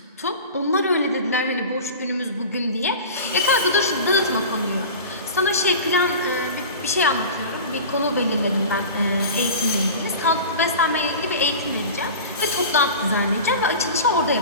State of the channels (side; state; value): both; inverted; correlation -0.34